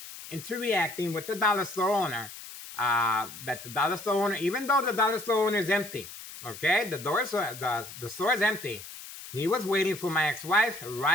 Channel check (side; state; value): left; noise; hiss, 13 dB below the sound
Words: into reacting with the dollar store owner, that the dollar store owner, even though the dollar store owner is empty, okay, the store is empty, he was waiting for my ex-wife